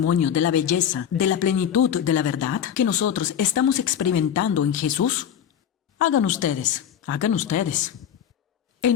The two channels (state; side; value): quieter; right; 9.1 dB